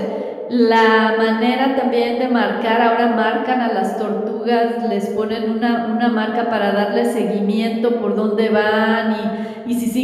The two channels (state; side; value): identical; both; correlation 1.00